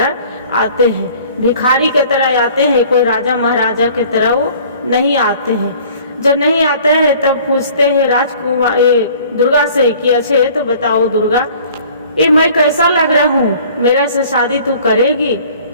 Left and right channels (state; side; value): inverted; both; correlation -0.51